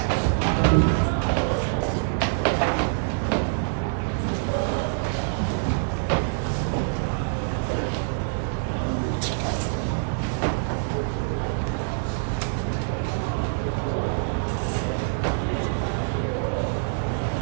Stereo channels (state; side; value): silent; left; digital silence